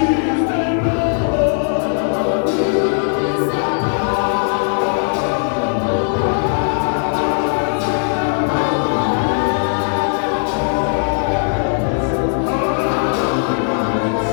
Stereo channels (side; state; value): right; silent; digital silence